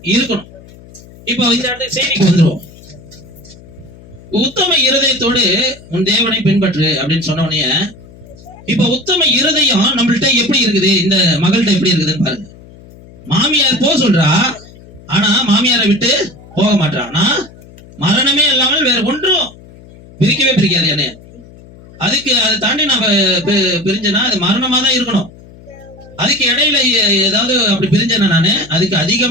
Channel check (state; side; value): noise; left; hum, 21 dB below the sound